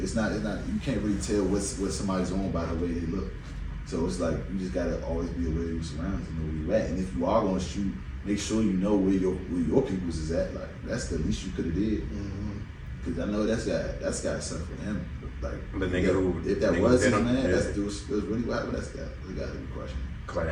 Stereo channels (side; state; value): both; identical; correlation 1.00